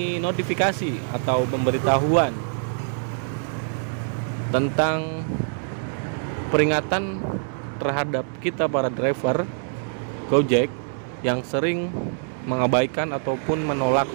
notifikasi atau pemberitahuan tentang peringatan terhadap kita para driver Gojek yang sering mengabaikan ataupun menolak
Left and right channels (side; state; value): left; silent; 62 dB below the other